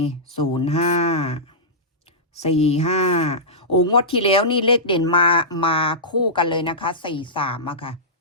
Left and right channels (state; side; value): normal; both; correlation -0.16